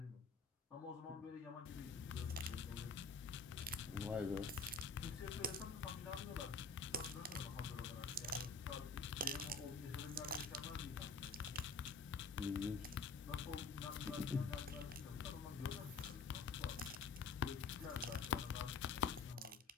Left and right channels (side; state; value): right; quieter; 4.5 dB